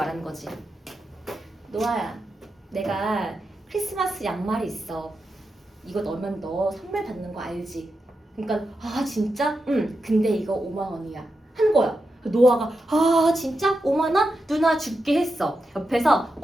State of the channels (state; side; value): normal; both; correlation 0.88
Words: 거지. 노아야, 내가 크리스마스 양말이 있어. 이거 넣으면 너 선물 받는 거 알지? 그러니까 진짜? 응. 근데 이거 5만 원이야. 한 거야. 노아가 진짜? 5만 원? 누나 줄게 했어. 옆에서